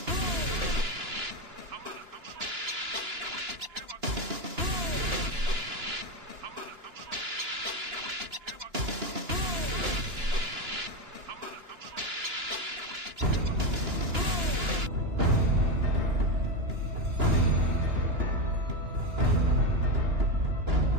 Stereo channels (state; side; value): late; left; 2.9 ms